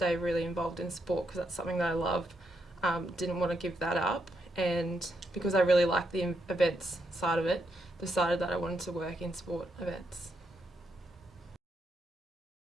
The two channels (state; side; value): normal; both; correlation 0.80